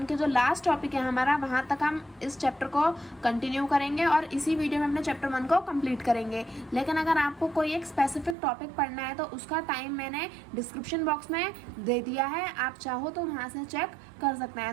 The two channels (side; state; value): left; drops out; at 8.3 s